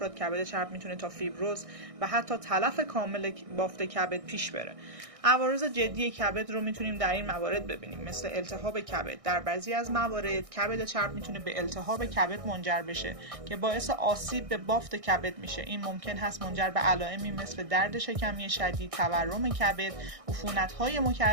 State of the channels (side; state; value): left; late; 1.6 ms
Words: کبد چرب میتونه تا فیبروز و حتی تلف کامل بافت کبد پیش بره. عوارض جدی کبد رو میتونیم در این موارد ببینیم، مثل التهاب کبد. در بعضی از موارد کبد چرب میتونه به التهاب کبد منجر بشه که باعث آسیب به بافت کبد میشه. این ممکن هست منجر به علائمی مثل درد شکمی شدید، تورم کبد، عفونت‌های